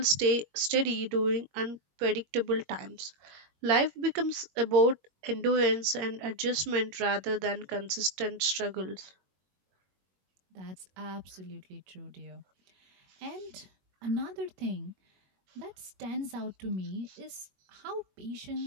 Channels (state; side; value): late; left; 21 ms